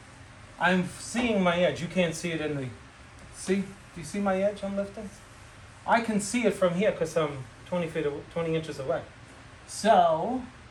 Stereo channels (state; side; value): identical; both; correlation 1.00